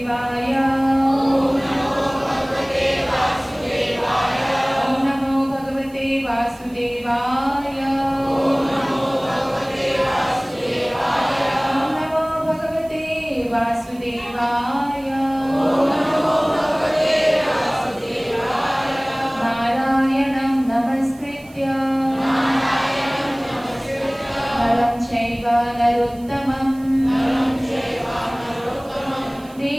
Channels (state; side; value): noise; right; hiss, 26 dB below the sound